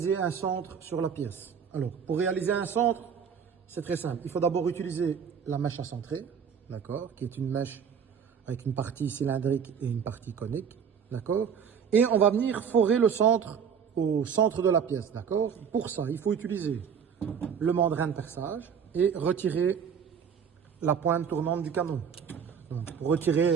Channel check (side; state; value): left; quieter; 7.2 dB